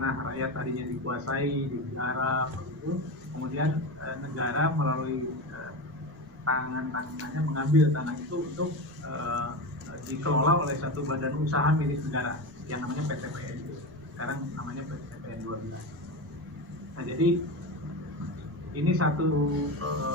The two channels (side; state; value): left; noise; rumble, 23 dB below the sound